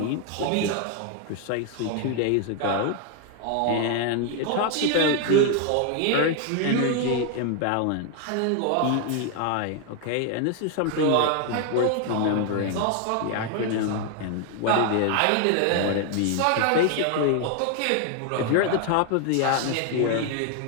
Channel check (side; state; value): both; different; correlation 0.01